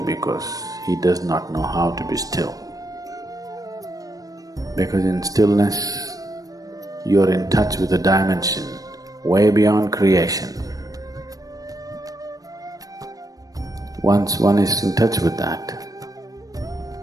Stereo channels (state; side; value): late; left; 0.18 ms